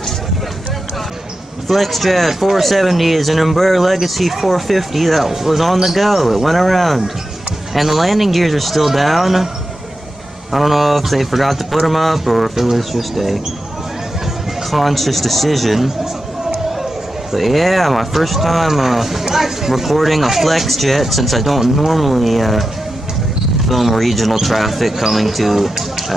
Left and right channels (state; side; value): normal; both; correlation 0.91